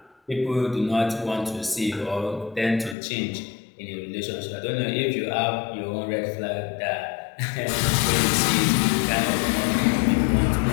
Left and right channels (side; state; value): right; drops out; at 3.0 s